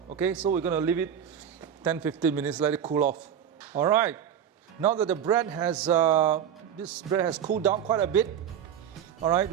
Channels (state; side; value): quieter; left; 9.0 dB